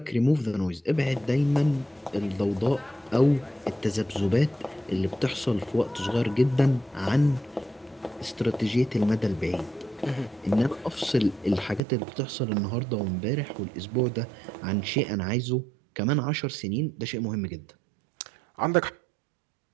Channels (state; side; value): drops out; left; at 11.8 s